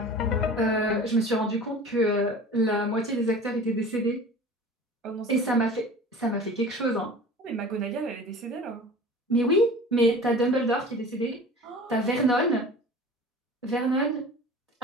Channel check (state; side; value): normal; both; correlation 0.40